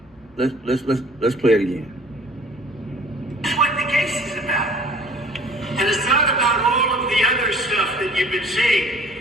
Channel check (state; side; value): normal; both; correlation 0.51